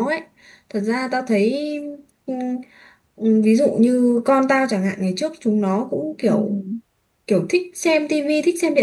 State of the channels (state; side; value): identical; both; correlation 1.00